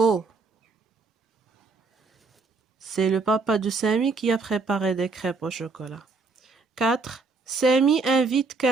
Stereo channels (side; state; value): left; quieter; 4.2 dB